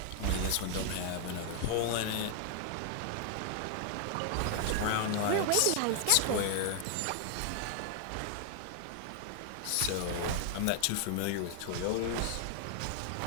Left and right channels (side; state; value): both; different; correlation 0.00